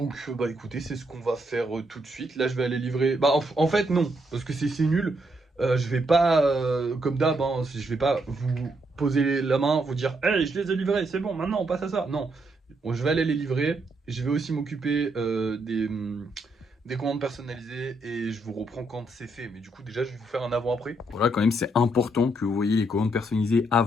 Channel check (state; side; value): normal; both; correlation 0.77